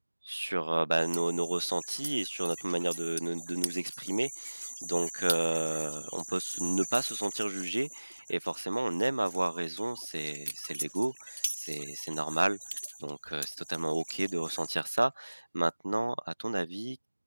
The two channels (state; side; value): inverted; both; correlation -1.00